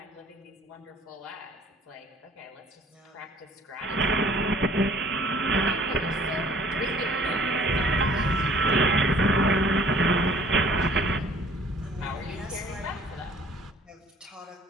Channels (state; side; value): normal; both; correlation 0.54